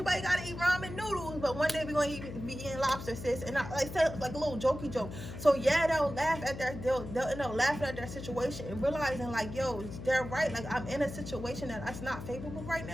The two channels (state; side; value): noise; left; hum, 10 dB below the sound